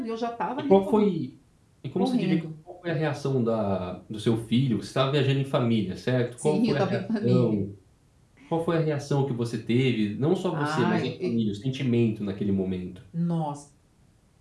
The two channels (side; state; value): both; identical; correlation 1.00